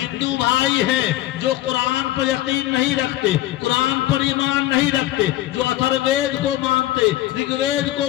भाई है जो कुरान पर यकीन नहीं रखते, कुरान पर ईमान नहीं रखते, जो अथर्ववेद को मानते, ऋग्वेद को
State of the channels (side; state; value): right; quieter; 15.3 dB